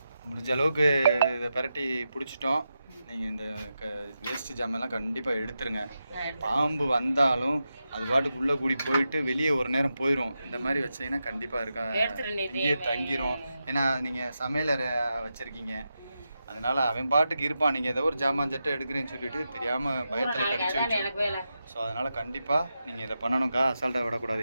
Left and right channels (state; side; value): inverted; both; correlation -0.89